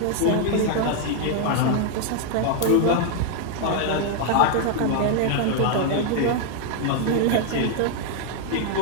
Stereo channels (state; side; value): different; both; correlation 0.00